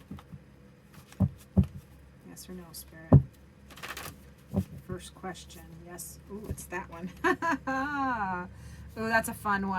Yes or no, Spirit? First question. Yes. Ooh, it's that one. Ooh, that's a fun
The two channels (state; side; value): identical; both; correlation 1.00